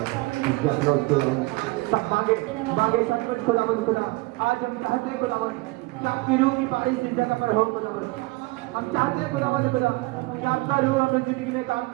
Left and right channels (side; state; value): left; quieter; 22.9 dB